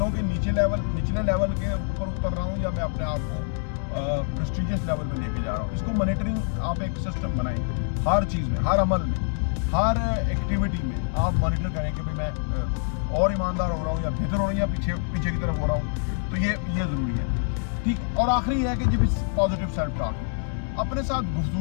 के निचले लेवल के ऊपर उतर रहा हूँ या मैं अपने आप को प्रेस्टीजियस लेवल पे लेके जा रहा हूँ। इसको मॉनिटरिंग आप एक सिस्टम बनाएं, हर चीज़ में, हर अमल में, हर एक्टिविटी में आप मॉनिटर करें कि भाई मैं और ईमानदार हो रहा हूँ या बेहतर हो रहा हूँ या पीछे की तरफ हो रहा हूँ। तो ये ज़रूरी है, ठीक। और आखिरी है कि जब पॉजिटिव सेल्फ टॉक, अपने साथ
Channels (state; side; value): silent; right; 61 dB below the other